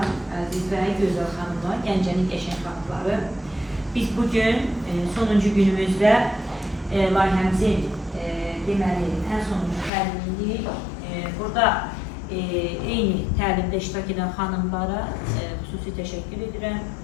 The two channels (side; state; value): right; drops out; at 9.9 s